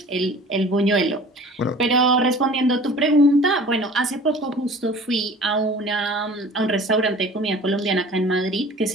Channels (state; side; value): normal; both; correlation 0.45